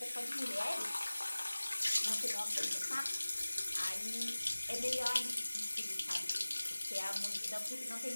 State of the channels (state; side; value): inverted; both; correlation -1.00